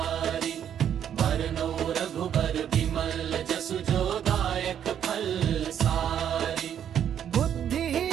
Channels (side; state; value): left; quieter; 9.4 dB